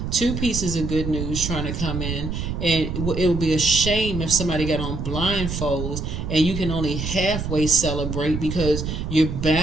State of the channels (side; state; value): right; noise; rumble, 4 dB below the sound